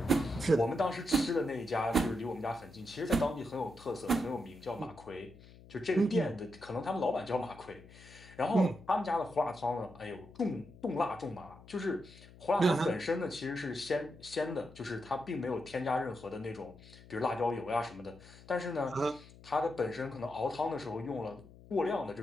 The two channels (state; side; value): noise; left; hum, 20 dB below the sound